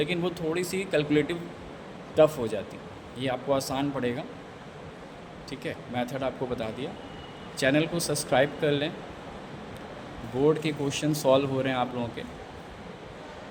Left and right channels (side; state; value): both; identical; correlation 1.00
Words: वो थोड़ी सी कैलकुलेटिव टफ़ हो जाती। ये आपको आसान पड़ेगा, ठीक है। मेथड आपको बता दिया। चैनल को सब्सक्राइब कर लें। बोर्ड के क्वेश्चन सॉल्व हो रहे हैं आप लोगों के।